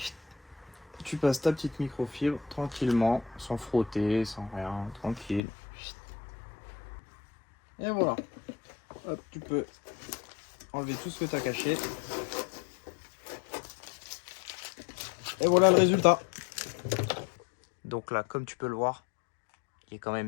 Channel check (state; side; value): drops out; right; at 5.4 s